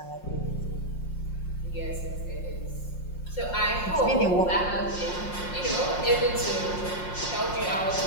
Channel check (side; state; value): right; late; 5.6 ms